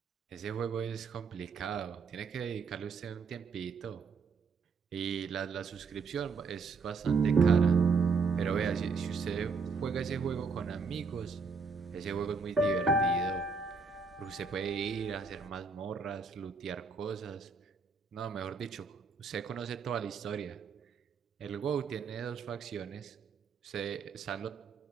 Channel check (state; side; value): quieter; left; 4.9 dB